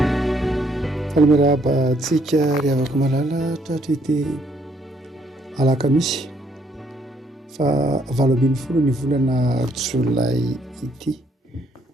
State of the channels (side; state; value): both; normal; correlation 0.69